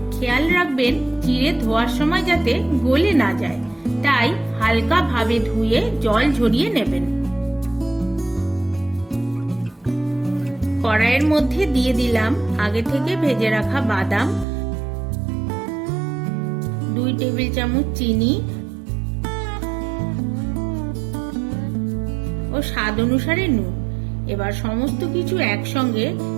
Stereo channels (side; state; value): left; drops out; at 14.5 s